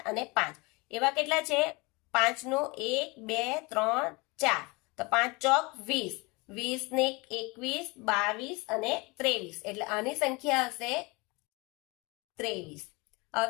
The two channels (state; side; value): quieter; right; 26.2 dB